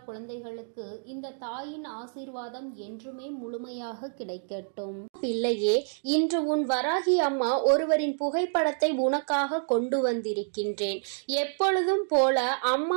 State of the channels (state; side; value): silent; left; digital silence